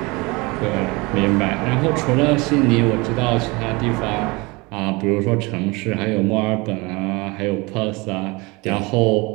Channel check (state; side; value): quieter; left; 25.3 dB